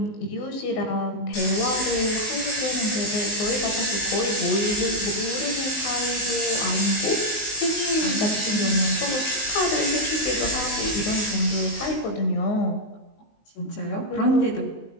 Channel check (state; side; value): late; right; 19 ms